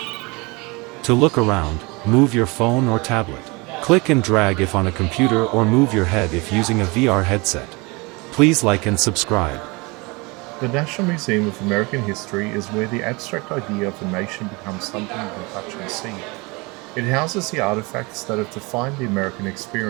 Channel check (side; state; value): left; quieter; 26.5 dB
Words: To look around, move your phone or tablet. Click and drag if on a computer or move your head if using a VR headset. Please like and subscribe. The National Museum of American History is where the abstract idea of a nation becomes something you can touch and see. It houses the artifacts that have defined the American